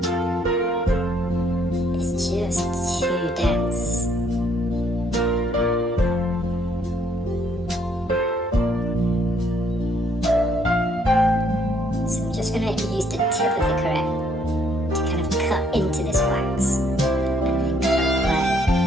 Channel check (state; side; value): normal; both; correlation 0.68